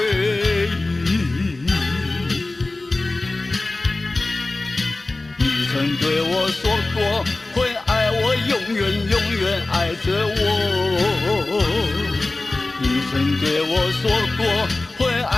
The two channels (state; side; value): quieter; right; 3.0 dB